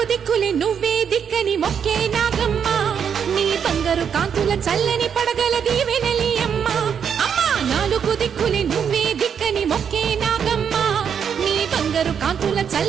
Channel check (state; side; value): quieter; left; 7.6 dB